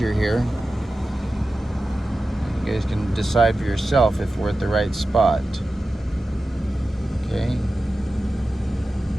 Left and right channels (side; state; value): both; normal; correlation 0.94